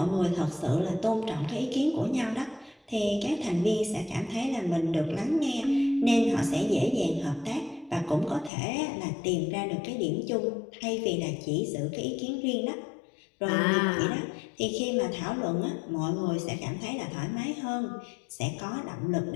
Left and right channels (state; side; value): drops out; right; at 8.5 s